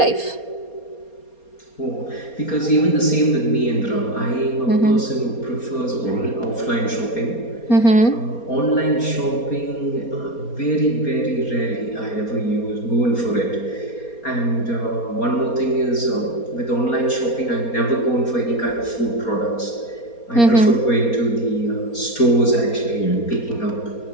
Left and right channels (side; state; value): right; late; 4.3 ms